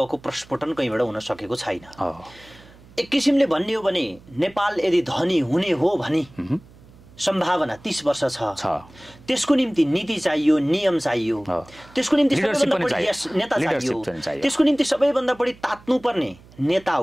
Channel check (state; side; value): noise; right; hum, 24 dB below the sound